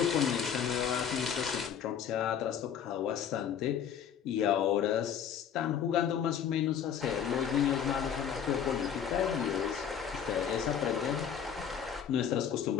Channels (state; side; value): quieter; right; 8.4 dB